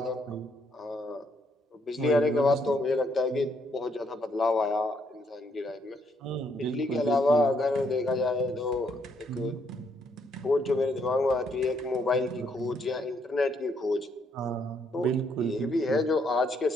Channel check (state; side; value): normal; both; correlation 0.72